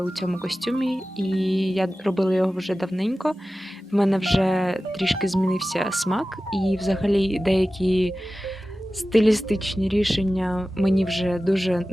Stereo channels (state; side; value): normal; both; correlation 0.95